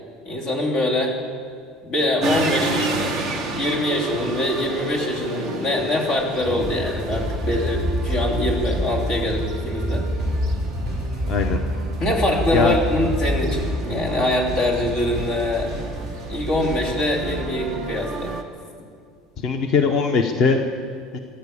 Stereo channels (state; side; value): normal; both; correlation 0.53